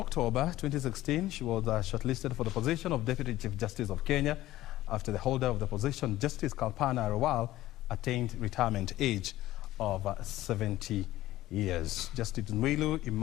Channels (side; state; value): right; quieter; 15.6 dB